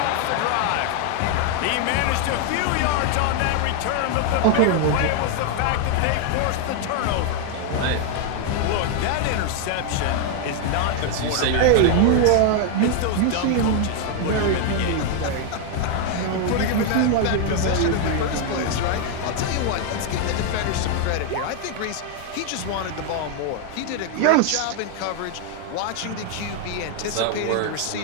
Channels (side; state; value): both; different; correlation 0.01